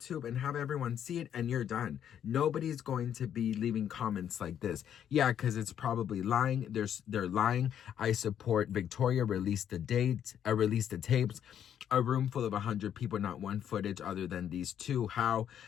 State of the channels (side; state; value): right; quieter; 9.5 dB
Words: and have everyone see it, and you're done. Nobody's going to be leaving comments like this. Yeah, because it's probably lying. They're lying. I support Victoria. Release the tapes. A room full of 100 people, not one footage other than these two. How?